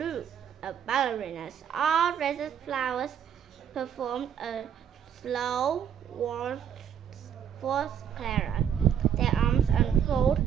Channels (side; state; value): left; quieter; 8.8 dB